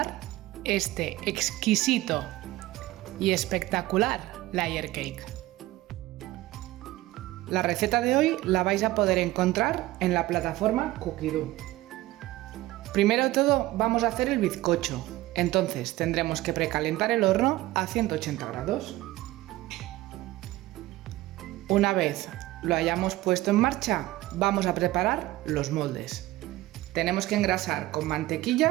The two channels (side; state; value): left; quieter; 17.4 dB